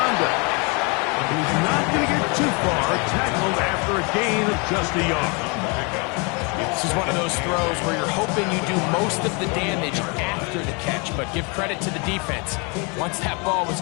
He's not going to get too far. Tackled after a gain of just a yard. This is one of those throws where you're hoping you do most of the damage after the catch, but give credit to the defense. Once that ball was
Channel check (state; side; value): quieter; right; 31.8 dB